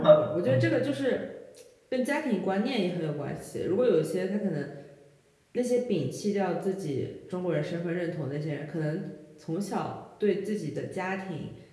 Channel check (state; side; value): identical; both; correlation 1.00